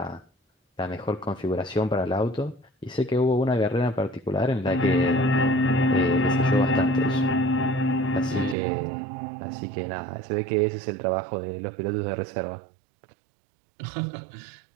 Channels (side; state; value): left; drops out; at 8.6 s